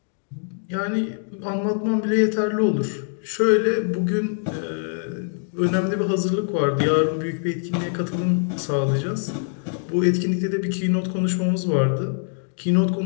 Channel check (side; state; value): right; silent; digital silence